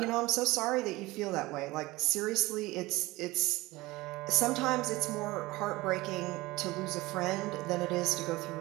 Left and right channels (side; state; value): left; quieter; 20.2 dB